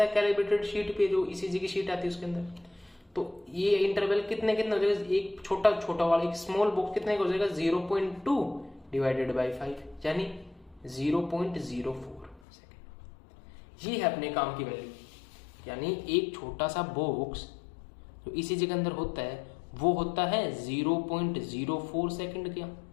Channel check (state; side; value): drops out; right; at 12.4 s